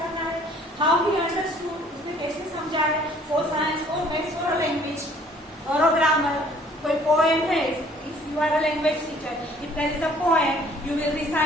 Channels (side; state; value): both; normal; correlation 0.57